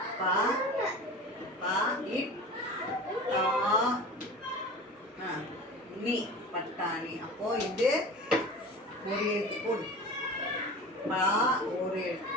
பா பா இட் தா நீ பட்டாணி. அப்போ இது ஒரு எழுத்து போடு. பா ஒரு எழுத்து,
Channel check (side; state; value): both; normal; correlation 0.35